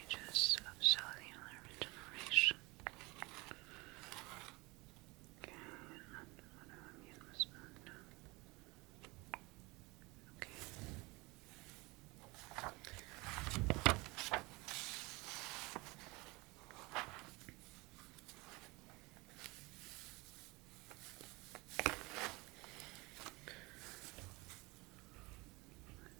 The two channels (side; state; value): left; quieter; 24.5 dB